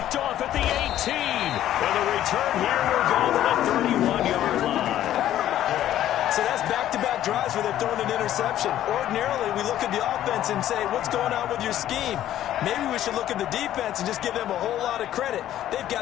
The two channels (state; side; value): quieter; right; 12.3 dB